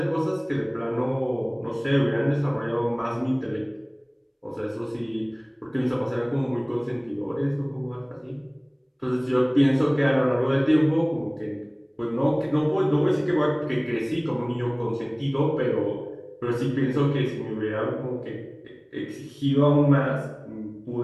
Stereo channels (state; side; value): identical; both; correlation 1.00